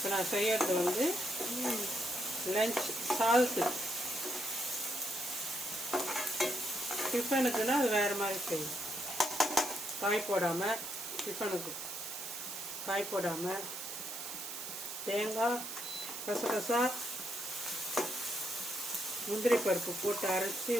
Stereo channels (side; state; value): right; noise; hiss, 7 dB below the sound